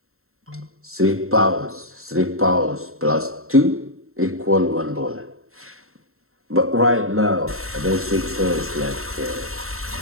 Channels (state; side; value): late; left; 0.62 ms